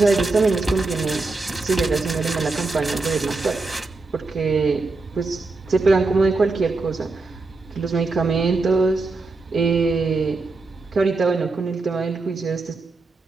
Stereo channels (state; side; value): quieter; left; 3.7 dB